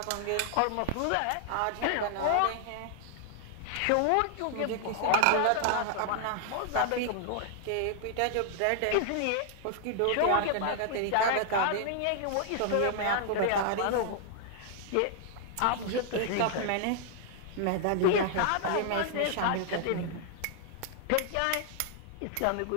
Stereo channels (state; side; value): different; both; correlation 0.00